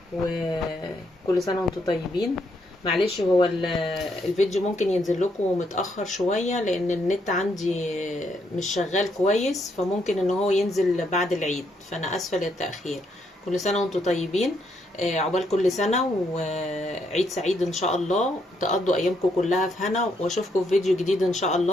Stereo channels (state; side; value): normal; both; correlation 0.75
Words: وكل سنه وانتم طيبين. معلش هو الفيديو ممكن ينزل لكم متاخر شويه لان النت عندي مش شغال كويس، فممكن ان هو ينزل بعد العيد، فانا اسفه للتاخير. كل سنه وانتم طيبين. عقبال كل سنه وعيد سعيد ان شاء الله، تقضوا ايامكم كلها في هنا، واشوفكم في فيديو جديد ان شاء